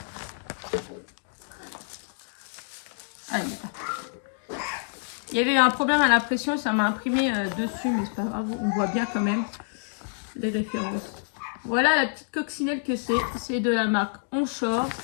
Ah, il y avait eu un problème à l'impression, ça m'a imprimé dessus, mais c'est pas grave, on voit bien quand même les références. Voilà la petite coccinelle que c'est de la marque Onshore.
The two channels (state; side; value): silent; right; digital silence